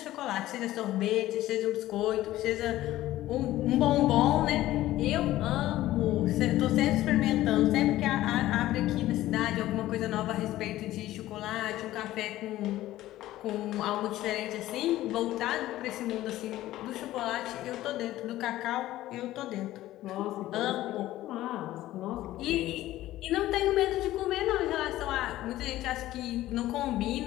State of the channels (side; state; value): right; quieter; 15.1 dB